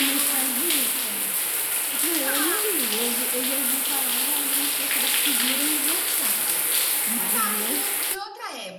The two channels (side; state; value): both; identical; correlation 1.00